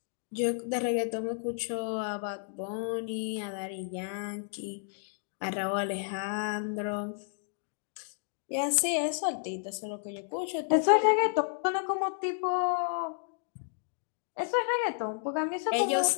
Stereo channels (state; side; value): silent; right; digital silence